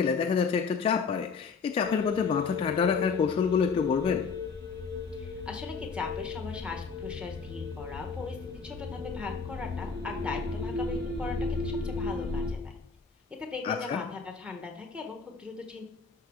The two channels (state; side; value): quieter; right; 5.2 dB